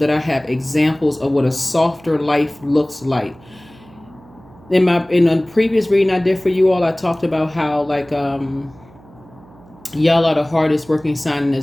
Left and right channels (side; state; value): right; noise; hum, 25 dB below the sound